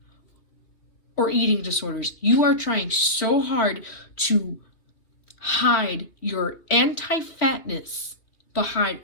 or eating disorders. You are trying so hard to hide your anti-fatness behind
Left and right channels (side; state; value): right; late; 2.8 ms